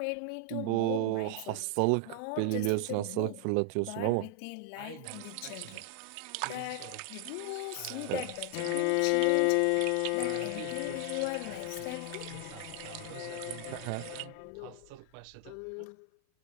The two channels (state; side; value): different; both; correlation 0.00